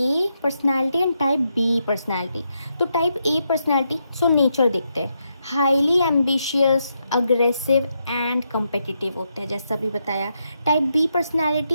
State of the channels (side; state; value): both; inverted; correlation -0.82